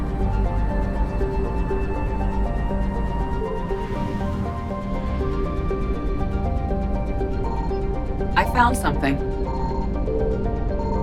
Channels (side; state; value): both; identical; correlation 1.00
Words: I found something.